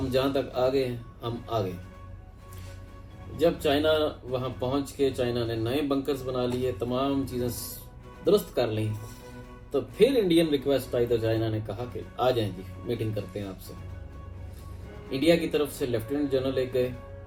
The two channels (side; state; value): both; identical; correlation 1.00